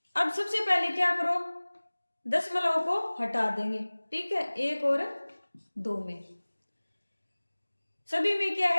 अब सबसे पहले क्या करो, दशमलव को हटा देंगे। ठीक है, 1 और 2 में सभी में क्या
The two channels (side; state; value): both; inverted; correlation -1.00